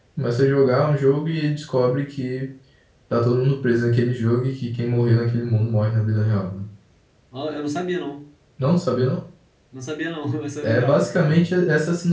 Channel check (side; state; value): both; identical; correlation 1.00